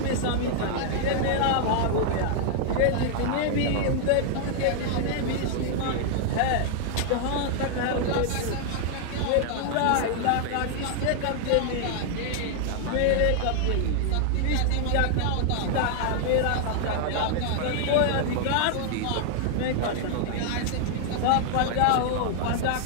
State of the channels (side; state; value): both; different; correlation 0.00